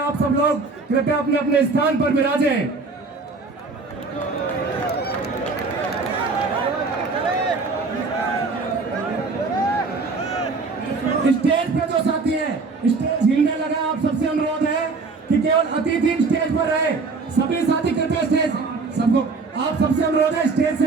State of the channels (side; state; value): left; quieter; 4.1 dB